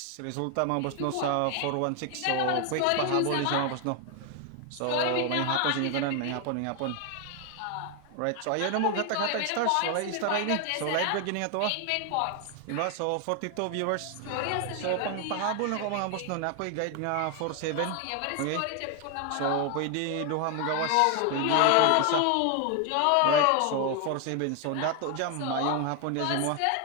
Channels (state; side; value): different; both; correlation 0.01